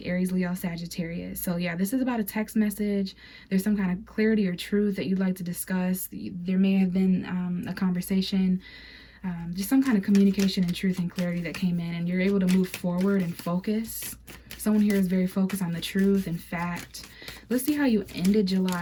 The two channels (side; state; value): both; identical; correlation 1.00